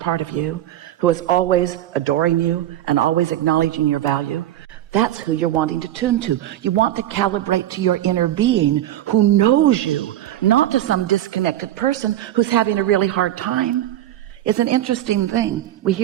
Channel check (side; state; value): left; quieter; 12.9 dB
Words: of you, who is always adoring you and always acknowledging your value, that's who you're wanting to tune to. You want to calibrate to your inner being who knows you, not to some disconnected person who's having a really hard time. It's an interesting thing. We